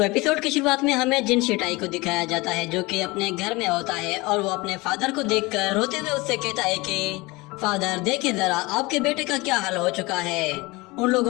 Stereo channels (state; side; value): quieter; right; 23.3 dB